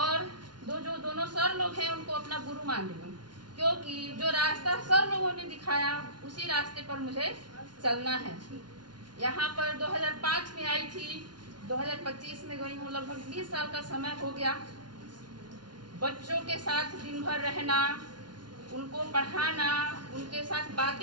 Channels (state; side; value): late; left; 0.70 ms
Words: दोनों सर लोग हैं उनको अपना गुरु मान रही हूँ, क्योंकि जो रास्ता सर लोगों ने दिखाया उसी रास्ते पर मुझे चलना है। यहाँ पर 2005 में आई थी, 2025 में गई हूँ, लगभग 20 साल का समय हो गया। बच्चों के साथ दिन भर रहना, उनको पढ़ाना, उनके साथ